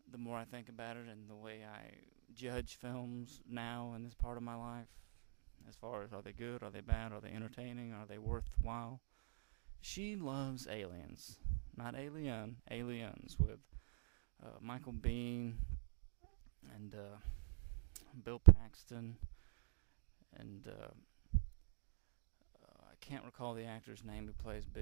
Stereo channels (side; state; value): left; silent; digital silence